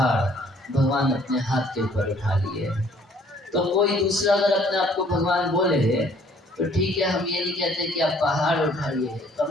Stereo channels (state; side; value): normal; both; correlation 0.59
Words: भगवान अपने हाथ के ऊपर उठा लिए। तो कोई दूसरा अगर अपने आप को भगवान बोले तो ठीक है, हम ये नहीं कहते कि आप पहाड़ उठाइए, कम